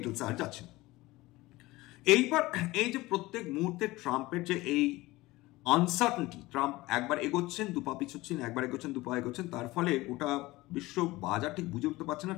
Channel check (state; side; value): quieter; right; 19.7 dB